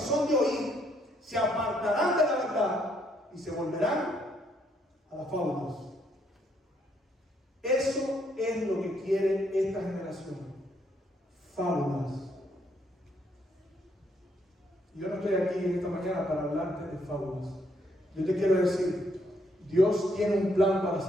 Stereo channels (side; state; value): both; normal; correlation 0.72